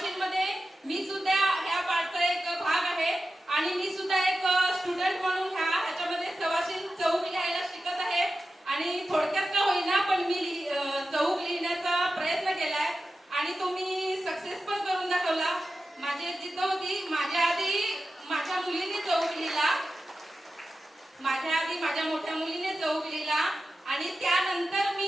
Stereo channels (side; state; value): both; normal; correlation 0.93